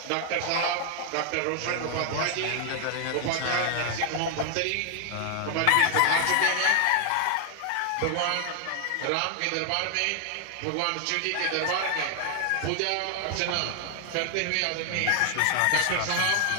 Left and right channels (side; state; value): both; different; correlation 0.00